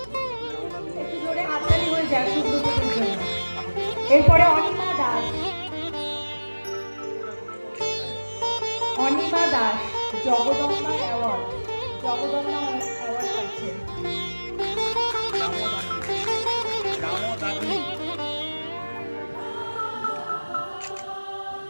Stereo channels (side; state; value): both; inverted; correlation -1.00